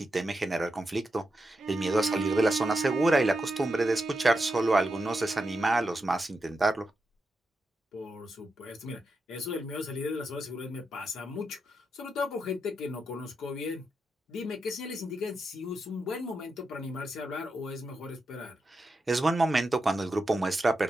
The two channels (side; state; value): both; normal; correlation 0.86